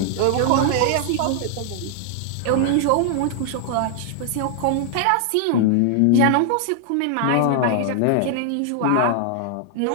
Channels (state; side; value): different; both; correlation 0.00